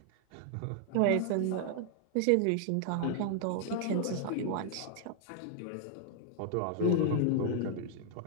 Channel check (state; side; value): different; both; correlation 0.00